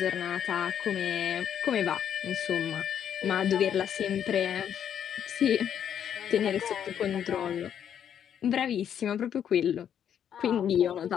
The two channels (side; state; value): right; quieter; 9.1 dB